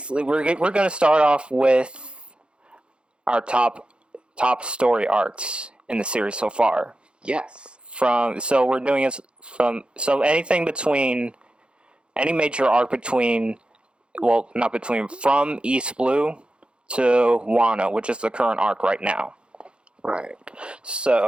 we're going to start off with our top story arcs in the series so far. Yes. We're doing it from anything between any major arc from East Blue to Wano, which is the current arc right now. Right.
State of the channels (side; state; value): left; late; 0.055 ms